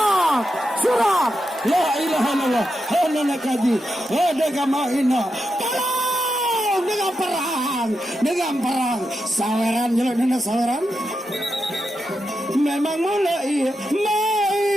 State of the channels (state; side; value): normal; both; correlation 0.87